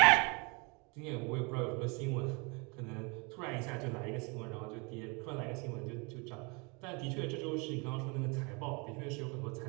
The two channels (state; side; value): quieter; left; 30.7 dB